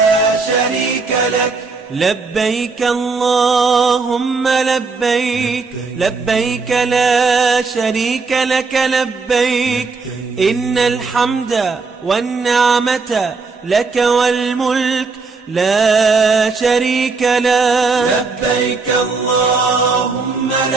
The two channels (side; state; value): left; quieter; 4.3 dB